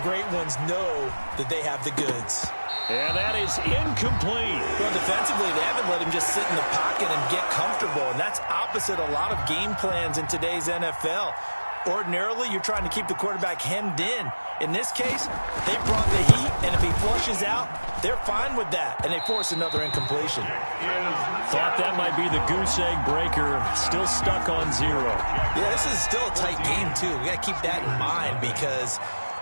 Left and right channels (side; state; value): both; inverted; correlation -1.00